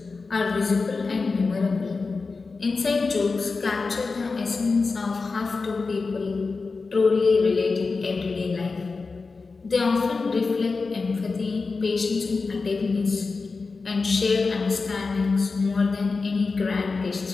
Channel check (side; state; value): right; quieter; 4.2 dB